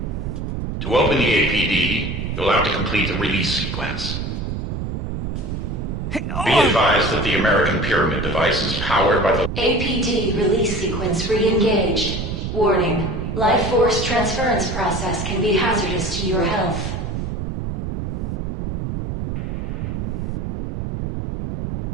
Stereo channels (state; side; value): noise; right; rumble, 4 dB below the sound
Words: To open the APD, you'll have to complete the release sequence. Be advised that the American Pyramid device is powered by the APD release sequence re-engaged. Warning. Life force transference process can be hazardous to your health.